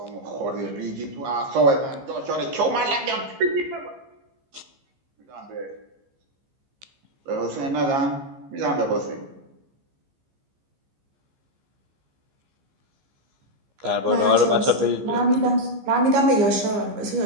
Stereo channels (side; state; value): left; late; 15 ms